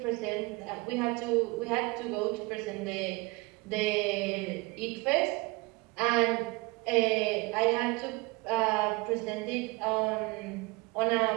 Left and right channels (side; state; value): left; quieter; 25.1 dB